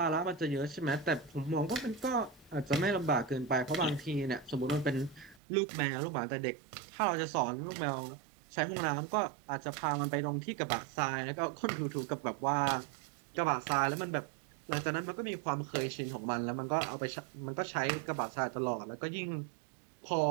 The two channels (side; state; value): left; drops out; at 5.4 s